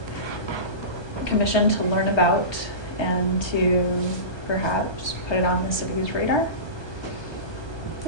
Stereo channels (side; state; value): right; late; 1.2 ms